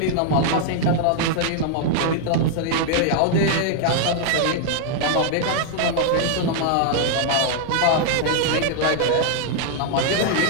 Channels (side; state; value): both; different; correlation 0.00